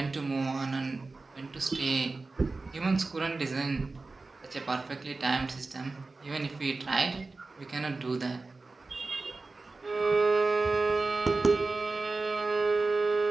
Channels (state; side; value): quieter; left; 3.6 dB